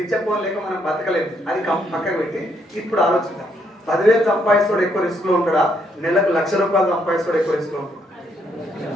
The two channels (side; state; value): both; normal; correlation 0.73